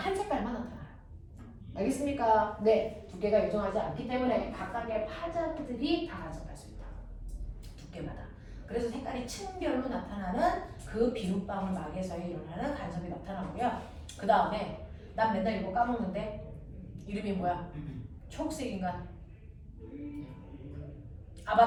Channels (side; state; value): both; identical; correlation 1.00